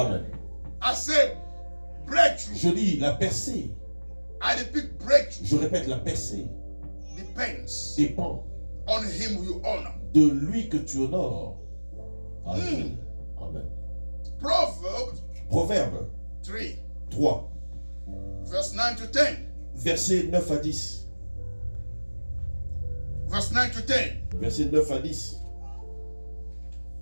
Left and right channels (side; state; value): both; inverted; correlation -1.00